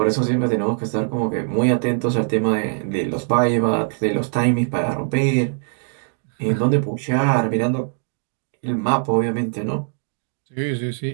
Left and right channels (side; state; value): left; silent; digital silence